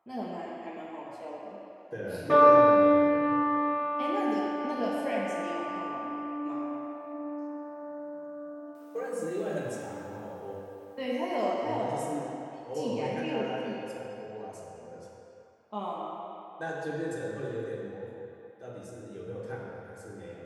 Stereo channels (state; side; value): identical; both; correlation 1.00